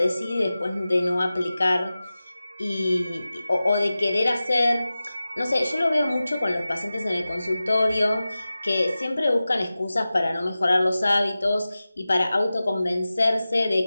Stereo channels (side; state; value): both; inverted; correlation -0.96